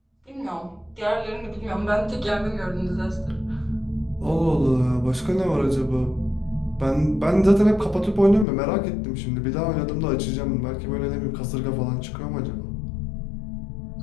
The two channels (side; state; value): right; drops out; at 8.5 s